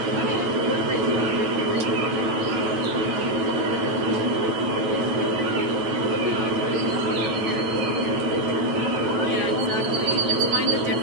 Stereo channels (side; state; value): left; late; 9.0 ms